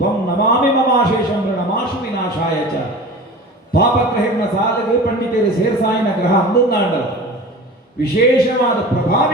ನಮಾಮಿ ಮಮಾಶೇಷಂ ನಮಾಶು ವಿನಾಶಾಯ ಚ ಪಾಪಗ್ರಹಿನ ಸಾಧಕ ಪಂಡಿತರು ಸೇರ್ಸಾಯಿನ ಗ್ರಹ ಅಂದುಂದಾಂಡ ವಿಶೇಷವಾದ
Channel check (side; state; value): both; normal; correlation 0.36